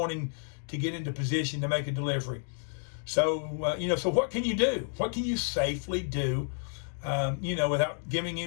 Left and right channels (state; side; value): silent; right; 57 dB below the other